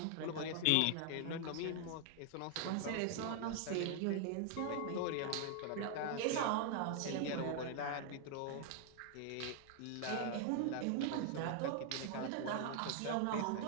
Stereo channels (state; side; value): different; both; correlation 0.00